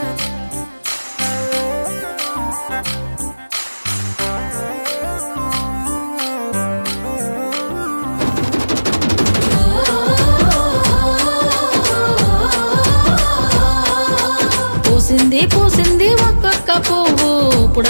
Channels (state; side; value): inverted; both; correlation -1.00